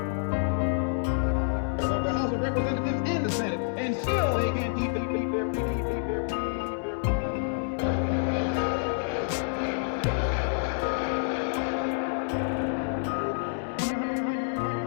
The House of Representatives and the Senate, and still they can't keep their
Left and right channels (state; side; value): silent; right; digital silence